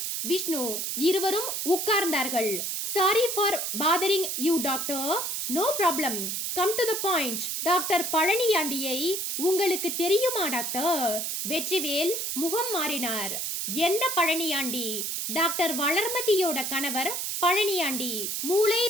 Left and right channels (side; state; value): right; noise; hiss, 2 dB below the sound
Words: விஷ்ணு இருவரும் உட்கார்ந்தார்கள். Sorry for bothering you doctor. No problem. Come to the point. Doctor பழனியாண்டியை உங்களுக்கு தெரியுமா டாக்டர்? வெற்றிவேல் முகம் மாறினார். எந்த பழனியாண்டி? டாக்டர் வளர்மதியோட கணவர் பழனியாண்டி, மூளை